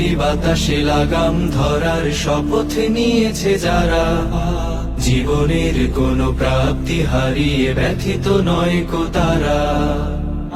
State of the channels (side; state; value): both; identical; correlation 1.00